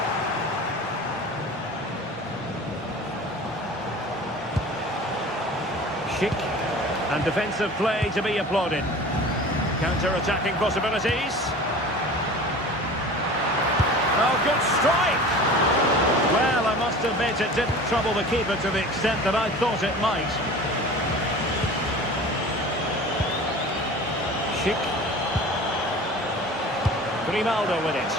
Schick. And defensive play to be applauded. Counter-attacking possibilities. Oh, good strike! Well, I must admit it didn't trouble the keeper to the extent that I thought it might. Schick. Grimaldo with it.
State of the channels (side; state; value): both; normal; correlation 0.39